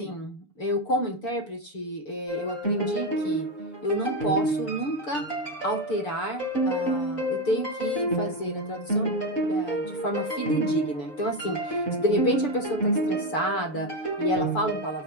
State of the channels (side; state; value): right; late; 6.9 ms